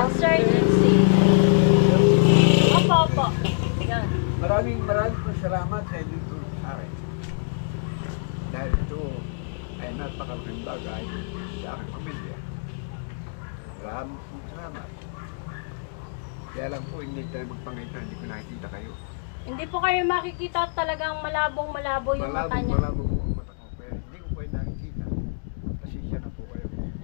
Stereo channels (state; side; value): silent; right; digital silence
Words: Sir Junsi. Opo. Yan. Maraming po salamat sa inyo sa akin. Dahil ito ay napakalaking bagay sa aking pamilya. Maraming po salamat. Kaya lang po, hindi tayo magpangita, hindi ko nakikita kayo. Hindi po kayo makikita, talagang malabo yung mata niya. Malabo po ang mata ko, pero hindi ko kayo nakikita. Pasensya na po kayo.